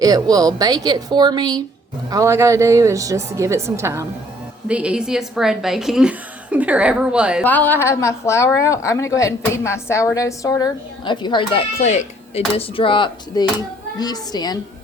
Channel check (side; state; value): both; normal; correlation 0.61